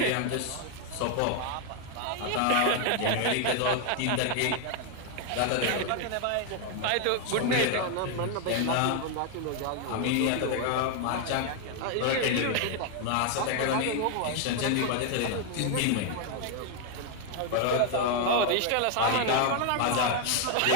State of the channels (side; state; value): both; different; correlation 0.00